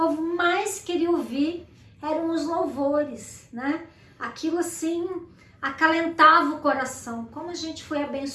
mais queria ouvir eram os louvores, né? Aquilo assim acalentava o coração. Como a gente foi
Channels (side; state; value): both; identical; correlation 1.00